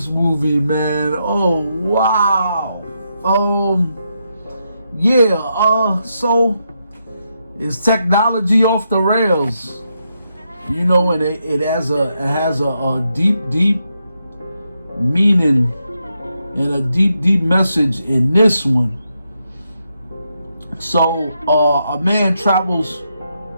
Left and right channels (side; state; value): both; inverted; correlation -0.82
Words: movie, man? Oh, wow. So is technology off the rails? You know, and it has a deep meaning and a deep message in this one. So a man travels